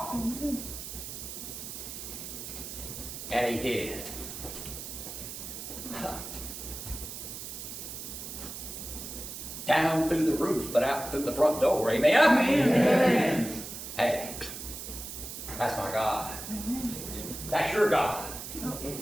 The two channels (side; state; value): right; noise; hiss, 9 dB below the sound